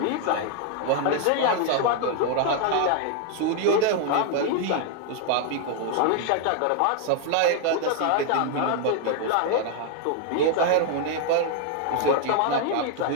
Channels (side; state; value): both; different; correlation 0.00